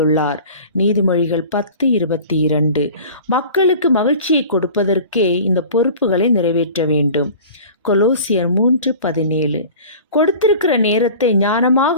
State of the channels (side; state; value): both; inverted; correlation -0.41